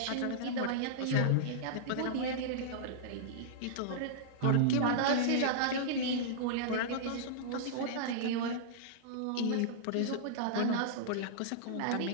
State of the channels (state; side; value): different; both; correlation -0.02